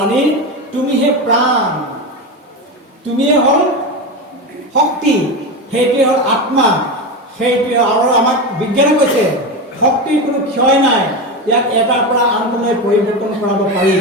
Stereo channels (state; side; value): normal; both; correlation 0.18